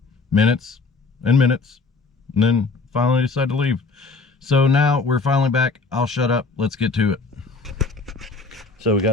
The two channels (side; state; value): right; quieter; 4.2 dB